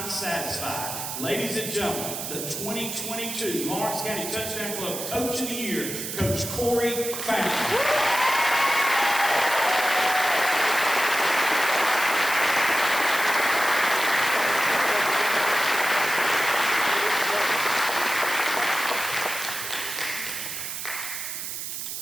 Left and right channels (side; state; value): right; noise; hiss, 6 dB below the sound